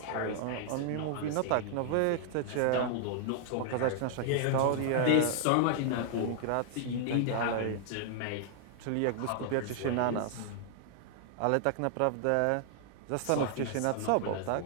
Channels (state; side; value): different; both; correlation 0.00